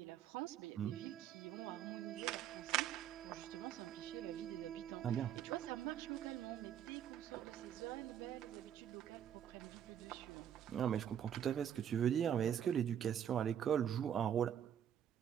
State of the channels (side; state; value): left; quieter; 9.6 dB